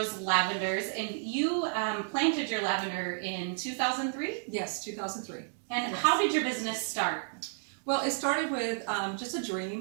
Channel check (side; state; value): left; silent; digital silence